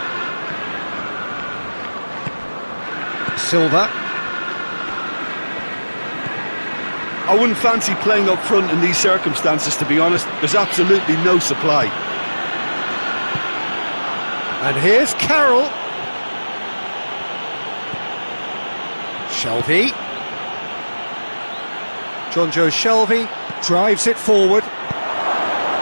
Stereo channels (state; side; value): inverted; both; correlation -1.00